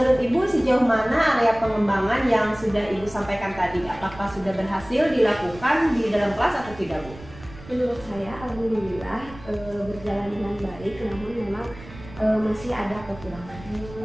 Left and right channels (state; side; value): noise; right; rumble, 18 dB below the sound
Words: Ibu sejauh mana area pengembangan yang sudah Ibu sampaikan tadi? Apakah sudah berhasil dilakukan di dalam kelas atau tidak Bu? Menurut saya alhamdulillah berjalan dengan baik, namun memang masih ada kekurangan.